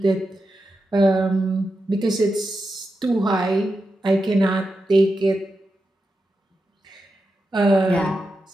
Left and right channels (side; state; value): both; normal; correlation 0.89